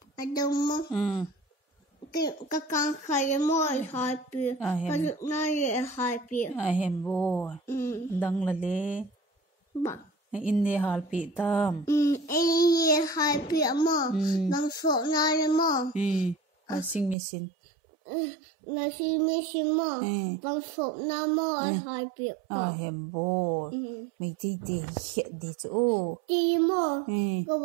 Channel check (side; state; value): left; drops out; at 17.2 s